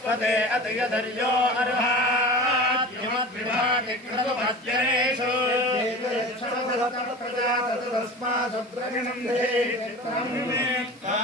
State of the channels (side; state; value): both; normal; correlation 0.34